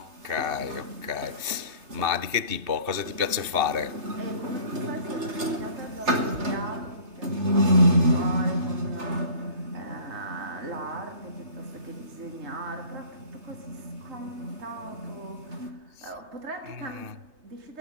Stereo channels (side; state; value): left; late; 3.2 ms